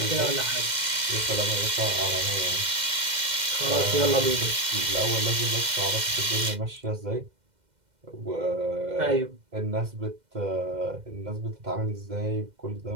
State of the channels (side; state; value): left; late; 2.1 ms